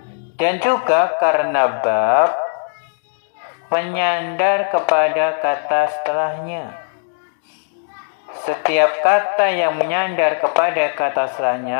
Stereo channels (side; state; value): right; silent; digital silence